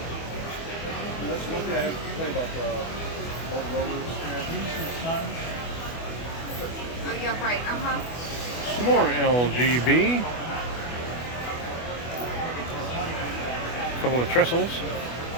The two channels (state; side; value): late; right; 24 ms